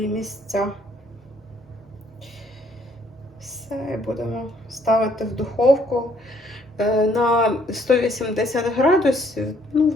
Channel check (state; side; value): normal; both; correlation 0.65